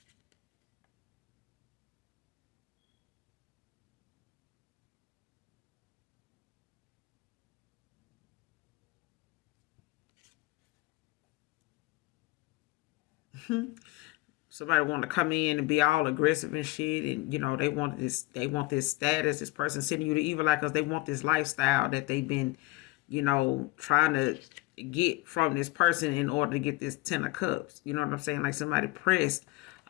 Somebody want to come in and be all aggressive and shit, and they want this status. This person sending you the evil eye because they want this lifestyle that they've been, trying to get from this person in order to get this 10 of cups. You know what I'm saying? Like somebody pressed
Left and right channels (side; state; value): right; quieter; 20.4 dB